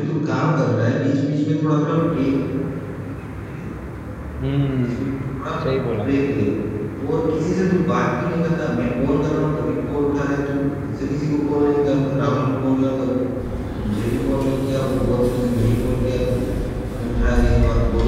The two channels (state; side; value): identical; both; correlation 1.00